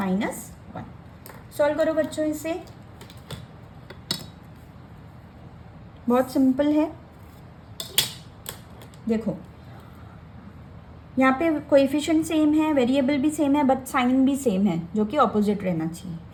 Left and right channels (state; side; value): identical; both; correlation 1.00